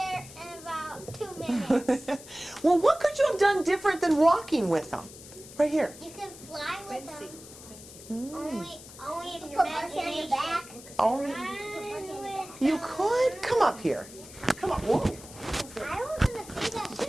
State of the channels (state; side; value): noise; left; hiss, 17 dB below the sound